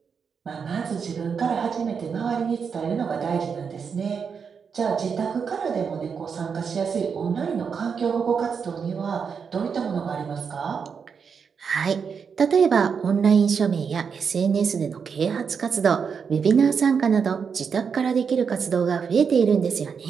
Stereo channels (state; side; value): quieter; left; 6.3 dB